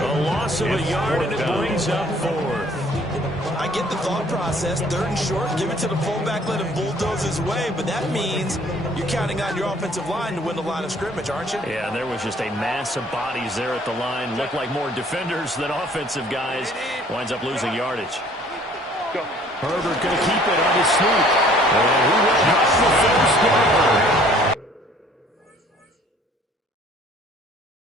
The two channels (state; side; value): normal; both; correlation 0.56